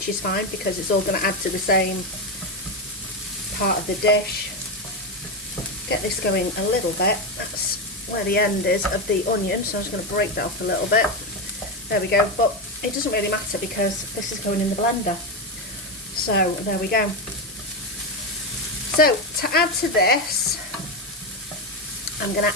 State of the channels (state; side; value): normal; both; correlation 0.11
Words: is fine because it's all going to add to the same part of the dish. get this going a little bit. That's where the end is of the onion, so I'm just going to break that off a little bit. There we go, but it doesn't really matter because this is going in the blender. So there we go. So to add to this, I'm going